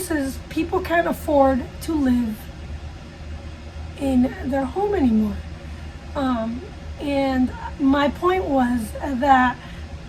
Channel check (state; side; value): identical; both; correlation 1.00